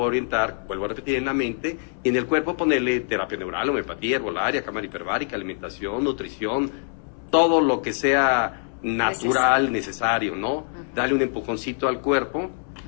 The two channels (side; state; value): right; silent; 62 dB below the other